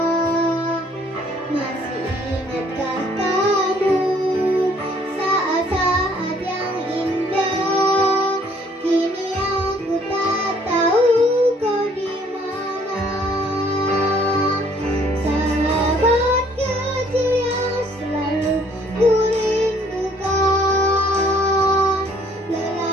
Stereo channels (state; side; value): normal; both; correlation 0.61